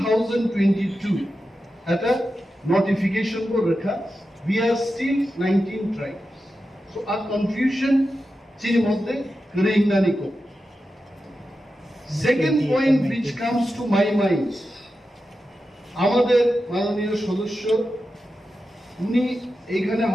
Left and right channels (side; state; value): both; normal; correlation 0.91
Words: এটা নোটিফিকেশন को रखा we are still 19 tribes so a confusion chini moddhe kring na niko second point which comes to my mind আমাদের মাননীয় সদস্য উনি এখানে